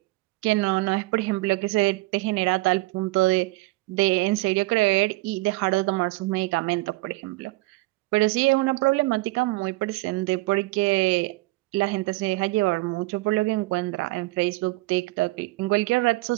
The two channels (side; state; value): left; quieter; 21.2 dB